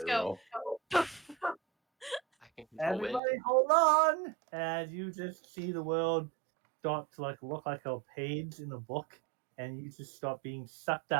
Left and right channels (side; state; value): left; drops out; at 3.2 s